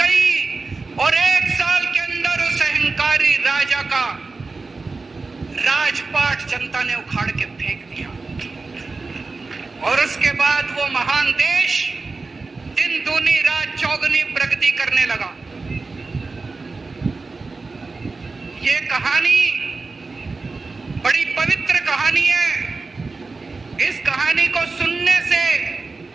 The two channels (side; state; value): left; quieter; 3.9 dB